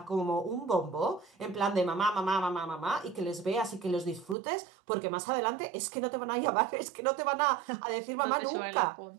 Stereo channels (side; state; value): left; drops out; at 4.4 s